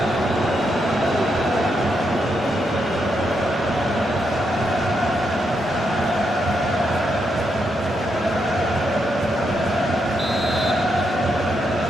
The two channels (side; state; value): both; normal; correlation 0.81